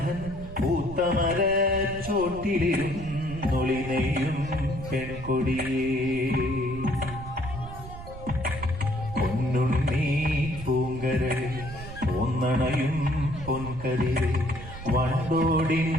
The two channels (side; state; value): right; noise; rumble, 12 dB below the sound